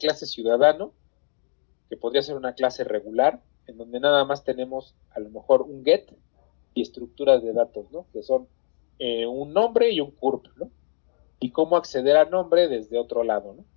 ciudadano, que podría ser una clase regular, en donde nada más tenemos a lo mejor un get y estructuras de datos, ¿no? Que son un nombre y un curp, ¿no? Y cómo acceder a nombre desde otro lado, ¿no?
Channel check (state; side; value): silent; right; 62 dB below the other